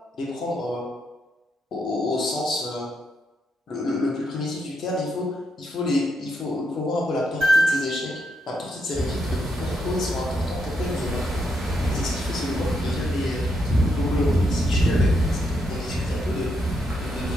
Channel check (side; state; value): both; normal; correlation 0.79